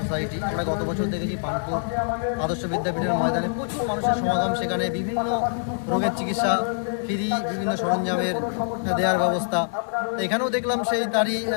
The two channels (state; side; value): silent; right; digital silence